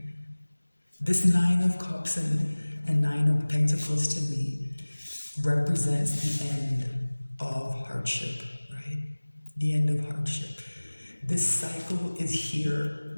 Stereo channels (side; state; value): both; inverted; correlation -1.00